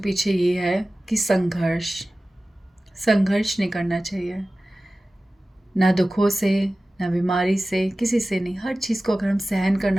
ये है कि संघर्ष नहीं करना चाहिए, ना दुखों से, ना बीमारी से, किसी से नहीं। हर चीज़ को अगर हम सहन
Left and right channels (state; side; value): normal; both; correlation 0.96